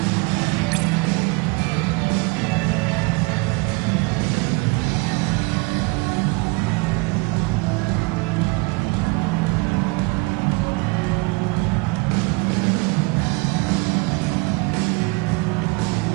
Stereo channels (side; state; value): left; quieter; 27.1 dB